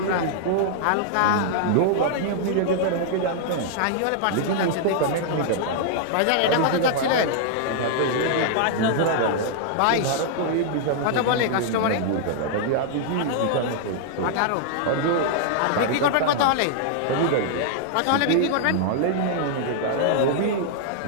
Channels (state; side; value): different; both; correlation -0.01